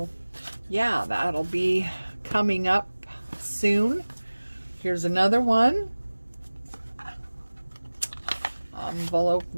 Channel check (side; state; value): both; inverted; correlation -1.00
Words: yeah, that'll be coming up soon. Here's another one. Envelope